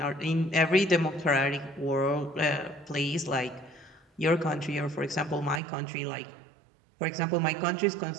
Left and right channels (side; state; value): left; drops out; at 5.6 s